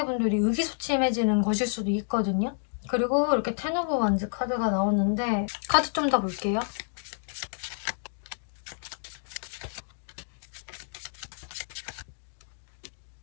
의기소침해지는 것일 수도 있거든요. 그리고 이렇게 텐 오브 완즈 카드가 나오는데 카드 좀 더 볼게요.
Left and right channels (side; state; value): right; silent; digital silence